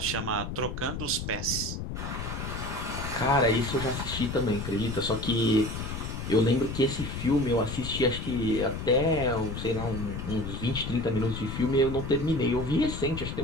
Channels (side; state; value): left; noise; rumble, 6 dB below the sound